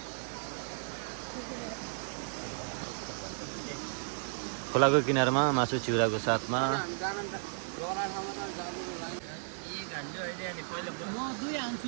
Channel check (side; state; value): left; silent; digital silence